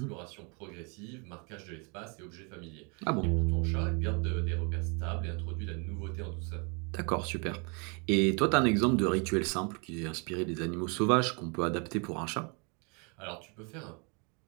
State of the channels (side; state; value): left; quieter; 33.8 dB